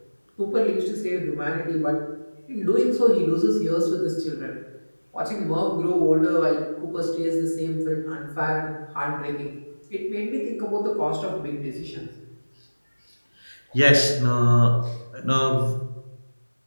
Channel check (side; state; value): both; inverted; correlation -1.00